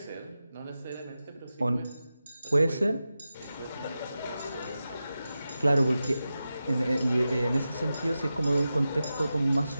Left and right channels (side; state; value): both; inverted; correlation -0.92